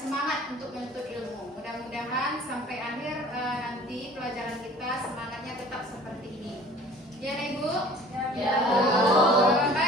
untuk menuntut ilmu. Mudah-mudahan sampai akhir nanti pelajaran kita semangatnya tetap seperti ini. Ya, Nek Ibu? Ya, Bu.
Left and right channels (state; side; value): normal; both; correlation 0.48